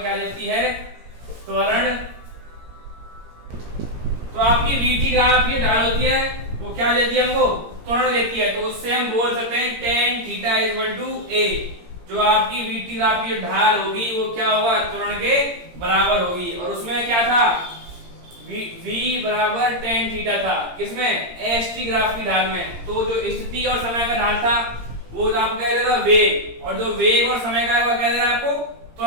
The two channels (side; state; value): left; late; 17 ms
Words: देती है? त्वरण। तो आपकी वीटी ग्राफ की ढाल होती है वो क्या देती है हमको? त्वरण देती है। तो उससे हम बोल सकते हैं tan theta equal to a। जो आपकी वीटी ग्राफ की ढाल होगी वो क्या होगा? त्वरण के बराबर होगी। और उसमें क्या था? v बराबर tan थीटा था। किसमें? एसटी ग्राफ की ढाल में। तो जो स्थिति और समय का ढाल था वो आपको कह दे रहा है वेग, और जो वेग और समय का है वो कह दे रहा है आपको